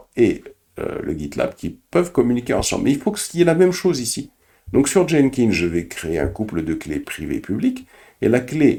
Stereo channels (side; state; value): both; identical; correlation 1.00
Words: et le GitLab qui peuvent communiquer ensemble. Mais il faut qu'il y ait la même chose ici. Donc sur Jenkins, je vais créer un couple de clés privées-publiques, et la